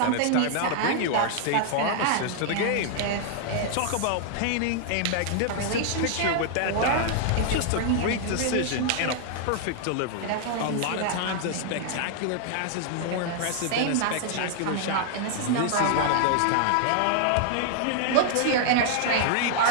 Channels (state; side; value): different; both; correlation 0.00